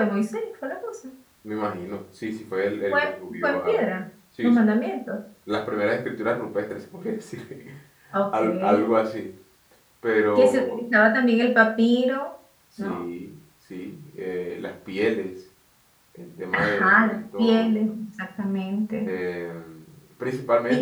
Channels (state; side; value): identical; both; correlation 1.00